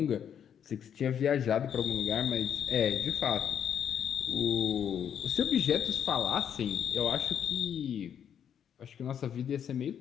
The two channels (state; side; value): quieter; right; 8.7 dB